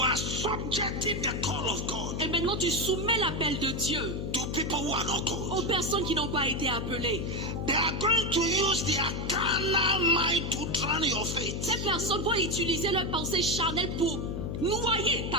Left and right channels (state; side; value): noise; left; hum, 3 dB below the sound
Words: subjecting the call of God Et maintenant, tu soumets l'appel de Dieu to people who are not aux called. personnes qui n'ont pas été appelées. They are going to use their carnal mind to drown your faith. Ces personnes vont utiliser leur pensée charnelle pour noyer